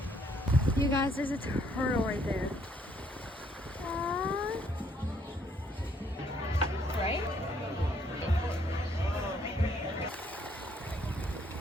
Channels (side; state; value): both; normal; correlation 0.67